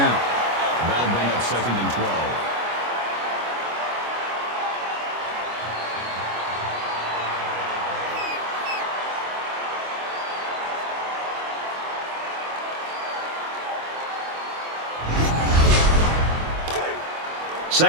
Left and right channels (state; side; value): late; left; 25 ms